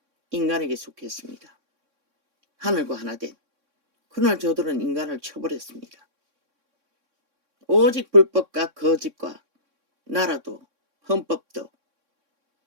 인간에게 속했습니다. 하늘과 하나 된. 그러나 저들은 인간을 쳐버렸습니다. 오직 불법과 거짓과 나라도 헌법도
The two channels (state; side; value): late; left; 3.6 ms